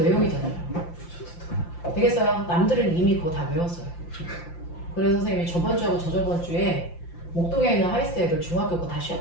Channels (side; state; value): right; late; 5.8 ms